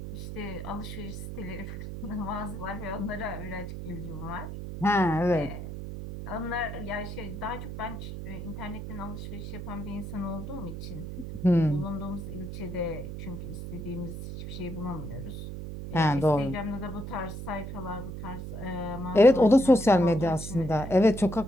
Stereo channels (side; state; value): right; noise; hum, 8 dB below the sound